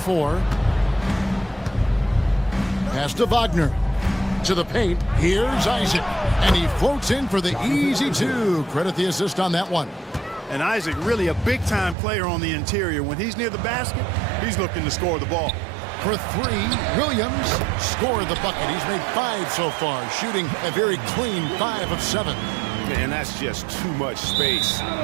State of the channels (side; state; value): left; drops out; at 12.0 s